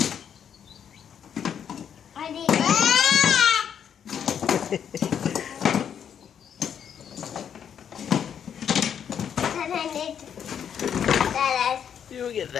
I need You'll get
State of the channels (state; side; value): quieter; right; 8.3 dB